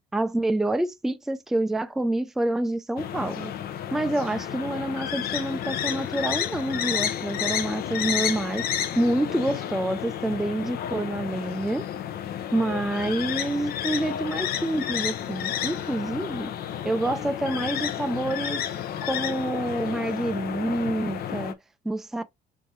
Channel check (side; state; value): both; normal; correlation 0.70